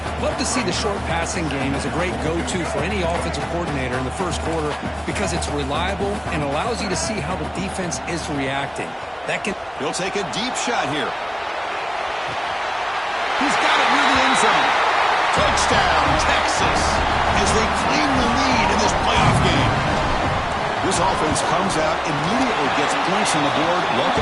4. Love to see the short passing game as a great go-to for any offensive coordinator in the first quarter because it's reliable and allows you to see how the defense is reacting. He'll take a deep shot here. He's got it near the end zone. Touchdown, Texas, as they claim the lead in this playoff game. This offense comes out, immediately gets points on the board.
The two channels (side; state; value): both; identical; correlation 1.00